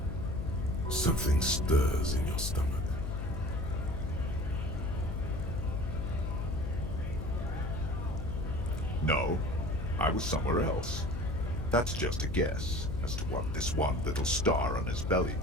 Something stirs in your stomach. No, I was somewhere else. That's just a guess as to what this one little star on his belly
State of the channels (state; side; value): noise; left; hum, 4 dB below the sound